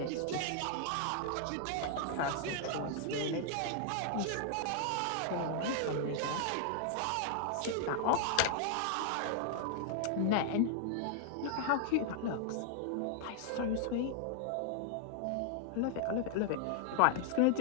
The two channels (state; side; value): different; both; correlation -0.01